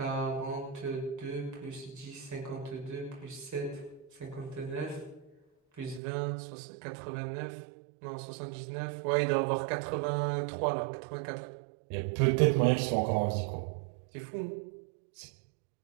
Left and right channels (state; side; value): drops out; left; at 6.0 s